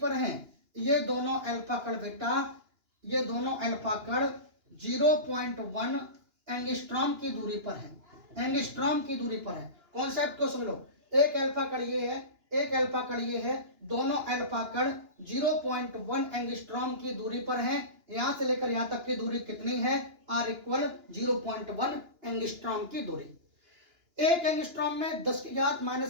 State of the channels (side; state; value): left; late; 2.9 ms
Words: हैं? ये दोनों अल्फा कण बेटा, ये दोनों अल्फा कण 0.1 एंगस्ट्रॉम की दूरी पर है, एंगस्ट्रॉम की दूरी पर है। कॉन्सेप्ट को समझ लो, एक अल्फा कण ये है, एक अल्फा कण ये है, दोनों अल्फा कण 0.1 एंगस्ट्रॉम की दूरी पर हैं। यहां से लेकर यहां तक की दूरी कितनी है? R इक्वल 0.1 एंगस्ट्रॉम की दूरी। एक एंगस्ट्रॉम में 10 की घात